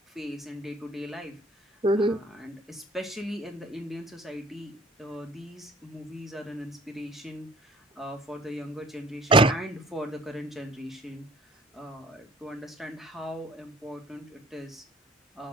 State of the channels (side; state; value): both; normal; correlation 0.54